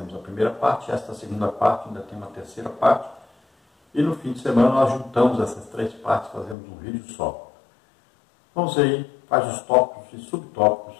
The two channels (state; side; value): drops out; right; at 6.6 s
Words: a primeira parte, esta segunda parte ainda tem uma terceira parte. E no fim de semana nós juntamos essas 3 partes, fazemos um vídeo só. Vamos aí, quais os tópicos e